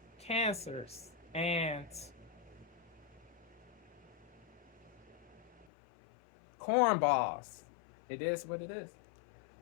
cancers and cornballs. It is what it is.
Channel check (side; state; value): right; drops out; at 5.7 s